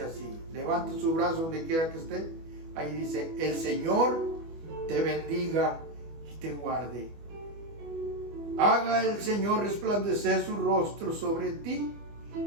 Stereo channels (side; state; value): left; late; 24 ms